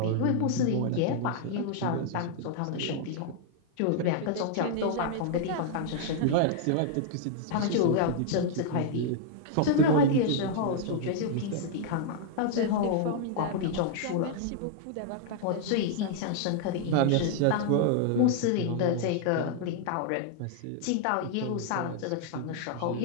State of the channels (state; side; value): different; both; correlation -0.01